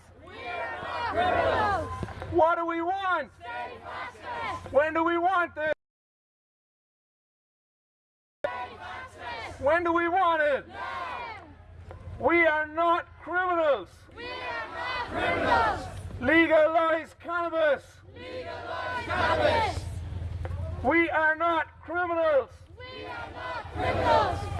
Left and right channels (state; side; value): identical; both; correlation 1.00